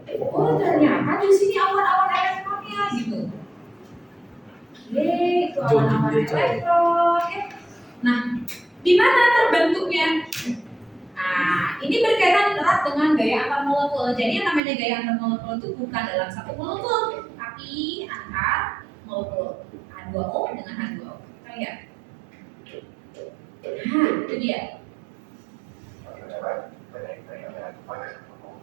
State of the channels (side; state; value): left; drops out; at 14.6 s